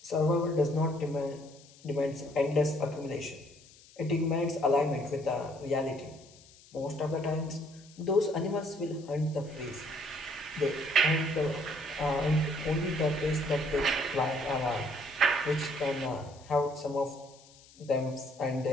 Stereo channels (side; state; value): left; noise; hiss, 24 dB below the sound